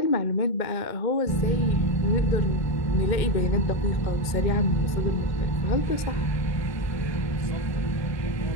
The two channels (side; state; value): right; late; 2.1 ms